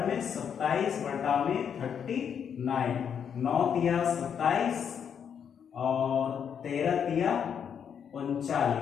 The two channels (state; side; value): quieter; right; 7.8 dB